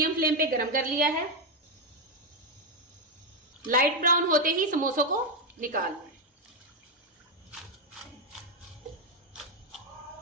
फ्लेम पे गरम कर लिया है। लाइट ब्राउन होते ही समोसों को निकाल लें।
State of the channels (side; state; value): both; normal; correlation 0.04